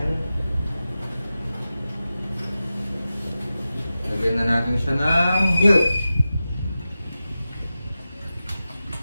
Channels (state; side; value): inverted; both; correlation -0.94